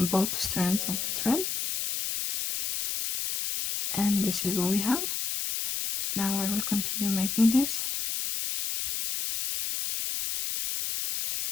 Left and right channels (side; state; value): left; noise; hiss, 2 dB below the sound